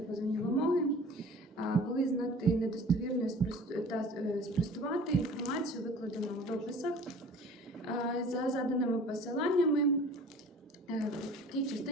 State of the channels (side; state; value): both; normal; correlation 0.46